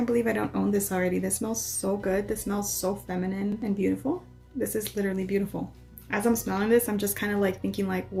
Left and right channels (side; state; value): both; identical; correlation 1.00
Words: believe I don't own this already. This smells so good. This smells so feminine and beautiful. This is literally beautiful. As I'm smelling this, I'm just kind of like thinking like,